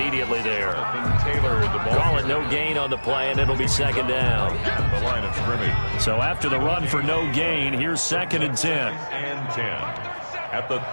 there. Taylor, the ball. Call it no gain on the play, and it'll be 2nd down. The line of scrimmage. So after the run for no gain, here's 2nd and 10. And 10 at the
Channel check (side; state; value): both; inverted; correlation -1.00